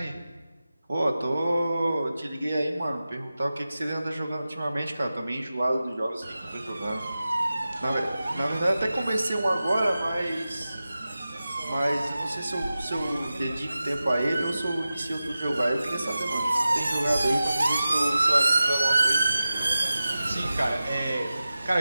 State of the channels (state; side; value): inverted; both; correlation -0.94